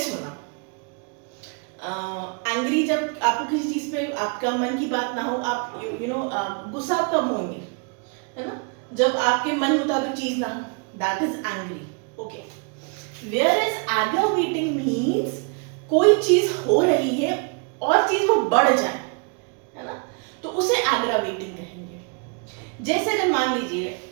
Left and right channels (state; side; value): quieter; left; 36.4 dB